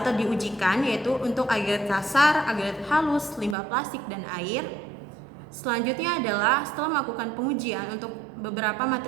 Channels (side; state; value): left; drops out; at 3.6 s